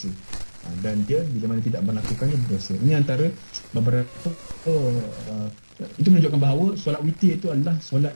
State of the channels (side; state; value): both; inverted; correlation -1.00